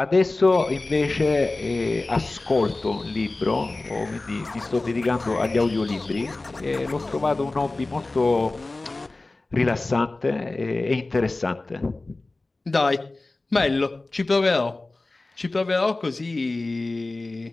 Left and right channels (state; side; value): quieter; right; 3.1 dB